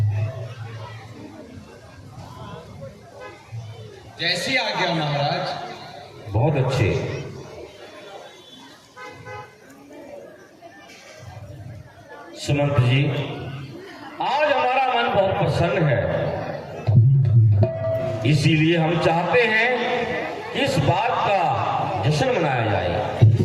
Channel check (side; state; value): both; identical; correlation 1.00